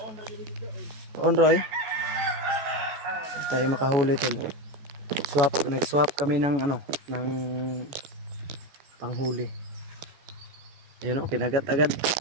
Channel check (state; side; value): late; left; 14 ms